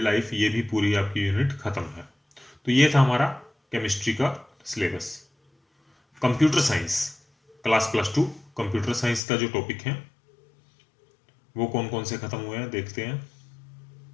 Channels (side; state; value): right; drops out; at 9.2 s